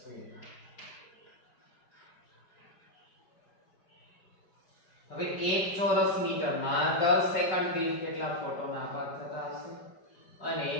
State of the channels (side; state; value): right; late; 5.3 ms